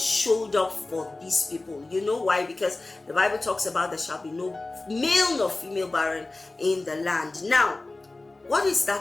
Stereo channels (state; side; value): quieter; right; 3.1 dB